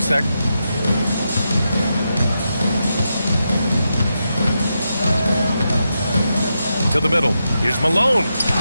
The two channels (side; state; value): both; inverted; correlation -0.86